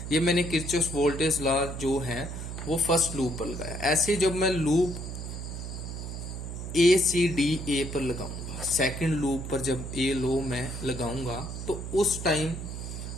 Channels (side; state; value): right; noise; hum, 7 dB below the sound